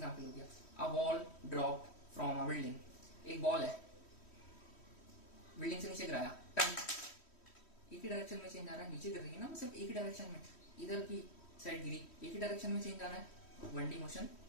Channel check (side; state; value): right; late; 3.1 ms